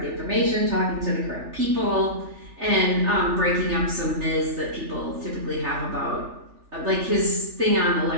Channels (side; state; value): left; late; 3.4 ms